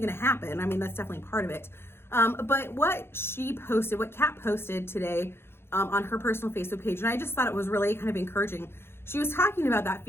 to happen. That's definitely part of it. But what Kat posted today on her personal Facebook page, and I just thought it was really kind of encouraging. She was talking about that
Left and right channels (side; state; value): right; late; 0.11 ms